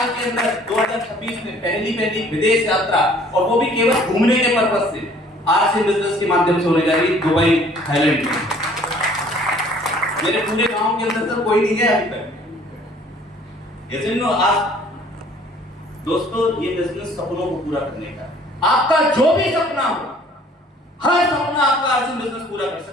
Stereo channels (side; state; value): both; normal; correlation 0.55